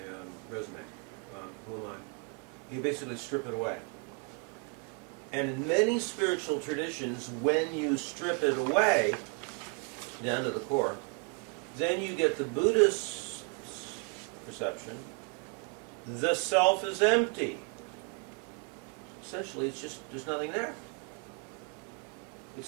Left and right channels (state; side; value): quieter; left; 34.7 dB